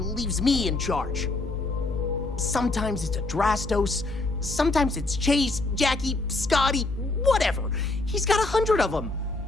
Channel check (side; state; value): right; quieter; 3.1 dB